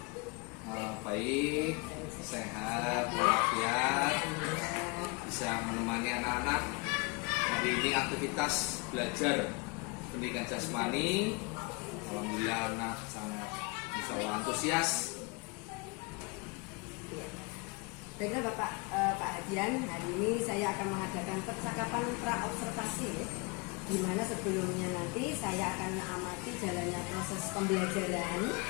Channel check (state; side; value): quieter; right; 29.4 dB